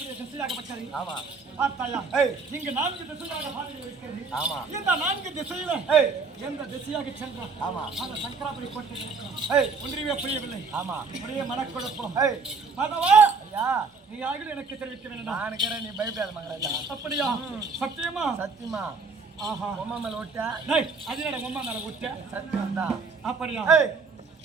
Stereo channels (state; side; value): quieter; left; 4.5 dB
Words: திசையாகப்பட்டது. ஆமா. பார்த்தாயா? ஏய். இங்கு 4 திசையாக பாதைகள் இருக்கிறது. ஆமா. இந்த 4 திசையில ஏய். எந்த திசையாக சென்றான்? ஆமா. அந்த சங்கராபுரி போட்டு இருக்கிறான். ஏய். ஒன்றியவே புரியவில்லை. ஆமா. ஒரே மனக்குழப்பம். ஏய். மாதவா, ஐயா, நீ ஆகிட எனக்கு தெரிவிக்க வேண்டாம். நான் இருக்கிறேன், நீ பயப்படாத மகாராஜா. அப்படியா? சத்தியமா? சத்தியமா. ஆஹா. உம்மா மேல விட்டா டேய், அது என்னடா உம்மா மேல விட்ட? சத்தியம் தான். அப்படியா? ஏய்.